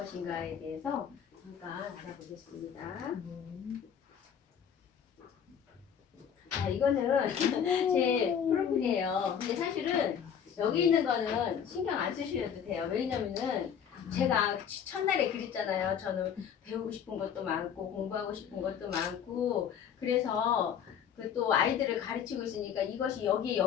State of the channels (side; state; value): right; quieter; 8.1 dB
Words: 대해서 잠깐 알아보겠습니다. 자, 이거는 제 프로필이에요. 근데 사실은 여기 있는 거는 신경 안 쓰셔도 돼요. 왜냐면은 제가 첫날에 그랬잖아요. 저는 배우고 싶은 것도 많고 공부하고 싶은 것도 많고 그래서 그 또 아이들을 가르치고 있으니까 이것이 여기에